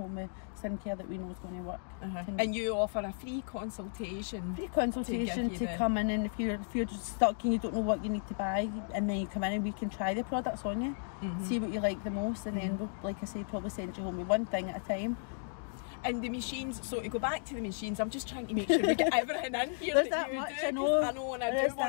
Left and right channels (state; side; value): silent; right; digital silence